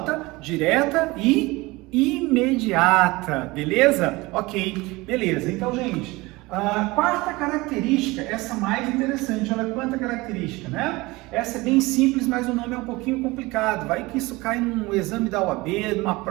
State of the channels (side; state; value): left; quieter; 22.0 dB